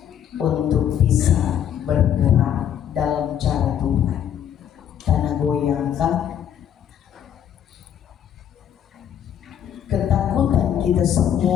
untuk bisa bergerak dalam cara Tuhan. Tanah goyangkan, ketakutan kita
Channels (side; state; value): right; quieter; 9.6 dB